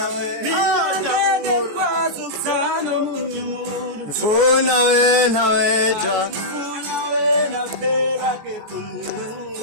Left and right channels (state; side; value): late; left; 14 ms